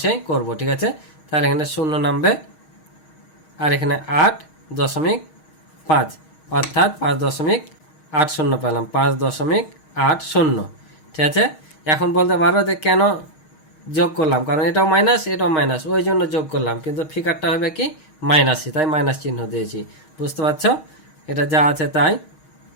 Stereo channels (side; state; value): right; late; 6.4 ms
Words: করব, ঠিক আছে। তাহলে এখানে 0 নামবে, আর এখানে 8.5, অর্থাৎ 5.80 পেলাম, 5.80, ঠিক আছে। এখন বলতে পারো যে কেন যোগ করলাম, কারণ এটাও মাইনাস এটাও মাইনাস, ওই জন্য যোগ করলাম, কিন্তু ফিগারটা হবে কি মাইনাসই, তাই মাইনাস চিহ্ন দিয়েছি। বুঝতে পারছো? এটা যা আছে তাই।